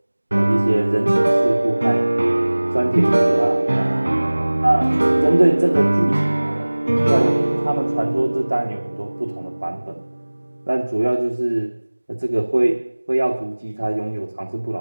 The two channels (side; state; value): both; inverted; correlation -1.00